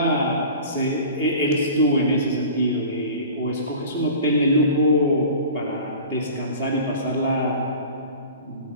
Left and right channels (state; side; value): inverted; both; correlation -0.39